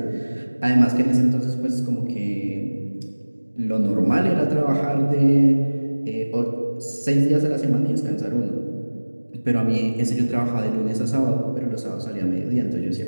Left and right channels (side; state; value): both; inverted; correlation -1.00